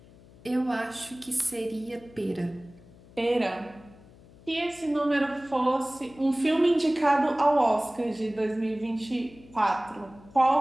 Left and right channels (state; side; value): noise; left; hum, 24 dB below the sound